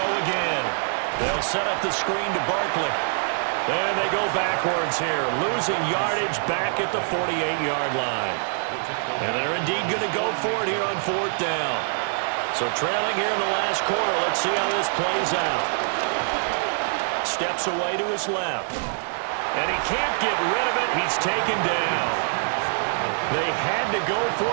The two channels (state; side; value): silent; left; 62 dB below the other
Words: again. They'll set up the screen to Barkley. And they go backwards here, losing yardage back at the 48-yard line. And they're indeed going to go for it here on 4th down. So trailing here in the last quarter, let's see how this plays out. Steps away to his left. And he can't get rid of it. He's taken down. They had to go for